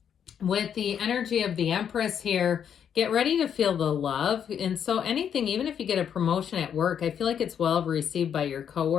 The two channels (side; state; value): right; quieter; 8.4 dB